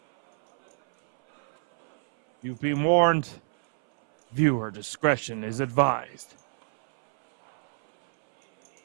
You've been warned. Viewer discretion is advised.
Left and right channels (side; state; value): left; silent; 61 dB below the other